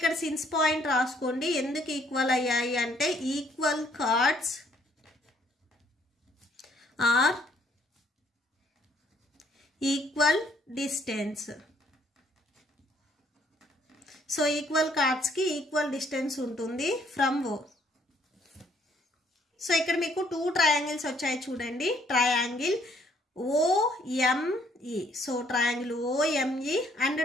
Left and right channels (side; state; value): both; normal; correlation 0.66